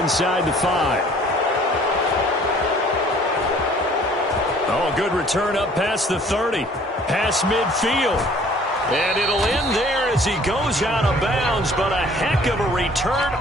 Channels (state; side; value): normal; both; correlation 0.54